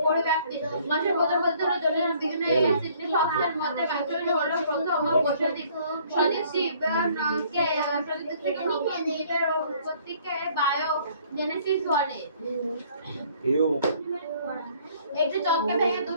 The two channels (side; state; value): both; inverted; correlation -0.59